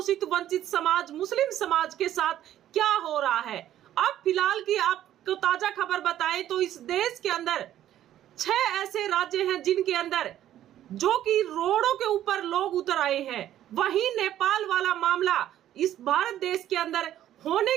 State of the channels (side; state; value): left; quieter; 12.1 dB